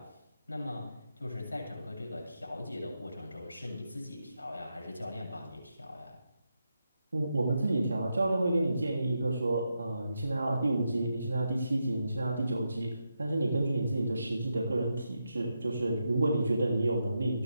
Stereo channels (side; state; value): both; inverted; correlation -0.86